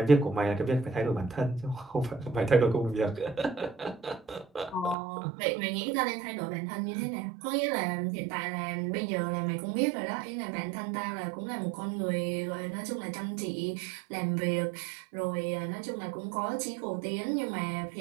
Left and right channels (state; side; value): drops out; left; at 5.0 s